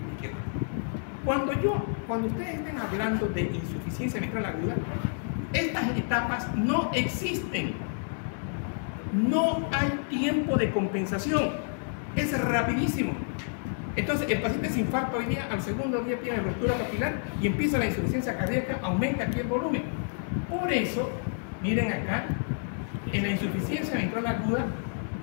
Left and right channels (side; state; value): right; silent; digital silence